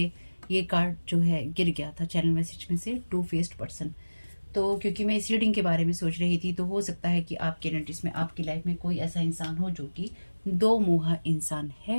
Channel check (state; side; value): inverted; both; correlation -1.00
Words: ये कार्ड जो है गिर गया था चैनल मैसेज में से, टू फेस्ड पर्सन। तो क्योंकि मैं इस रीडिंग के बारे में सोच रही थी, तो हो सकता है कि आपके एनर्जीज में, आपकी लाइफ में कोई ऐसा इंसान हो जो कि दो मुहा इंसान